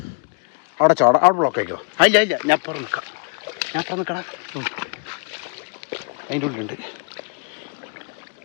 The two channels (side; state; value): right; quieter; 35.8 dB